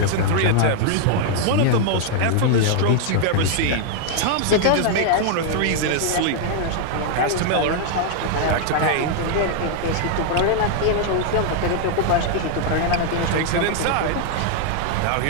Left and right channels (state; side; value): different; both; correlation 0.00